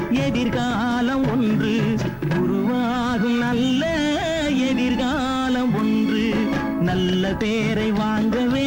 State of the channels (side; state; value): both; identical; correlation 1.00